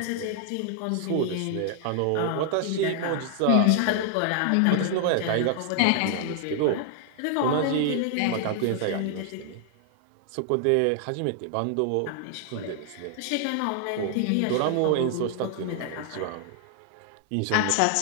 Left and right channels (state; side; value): different; both; correlation 0.00